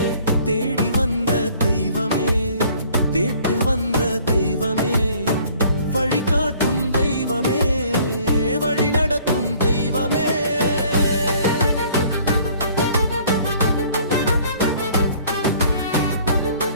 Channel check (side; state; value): both; inverted; correlation -0.56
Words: தேடி வந்த தெய்வமே, தேட்டு வந்த தெய்வமே, வழிகாட்டும் தெய்வமே, வழி நடத்தும் தெய்வமே.